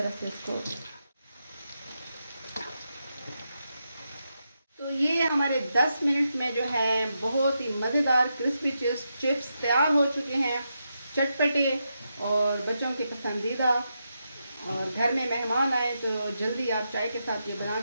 से इसको। तो ये हमारे 10 मिनट में जो है बहुत ही मज़ेदार क्रिस्पी चिप्स तैयार हो चुके हैं, चटपटे और बच्चों के पसंदीदा। और घर में मेहमान आए तो जल्दी आप चाय के साथ ये बना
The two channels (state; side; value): inverted; both; correlation -0.85